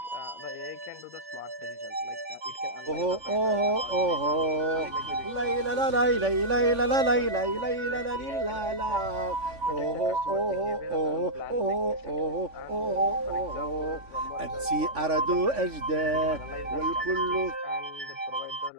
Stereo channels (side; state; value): left; late; 3.5 ms